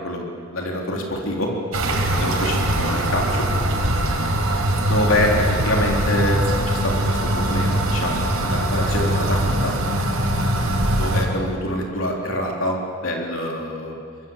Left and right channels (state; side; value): normal; both; correlation 0.46